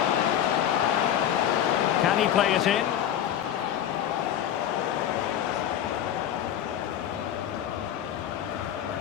Can he play it in?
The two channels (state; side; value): quieter; right; 10.4 dB